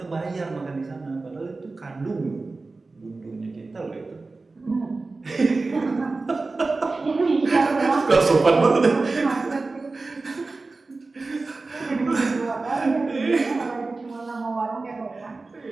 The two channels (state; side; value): quieter; left; 3.6 dB